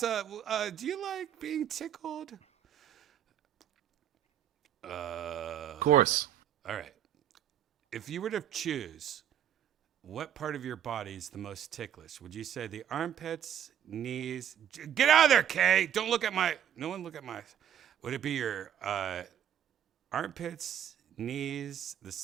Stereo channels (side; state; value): left; quieter; 9.9 dB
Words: do you like being tickled? Of course. All right. If you were to choose, what part of your body is the most ticklish? Would you say the armpits, knees? Get out of there, Kay! Don't look at my. No one look at my. Would it be your armpits, knees, the